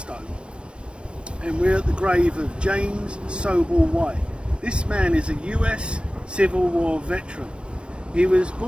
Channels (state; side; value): late; left; 0.058 ms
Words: and we're at the grave of James Schobel White. This man is a US Civil War veteran. He was